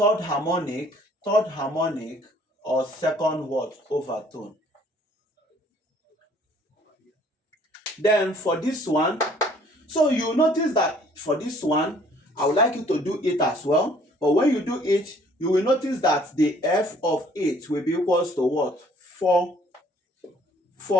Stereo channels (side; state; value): both; normal; correlation 0.59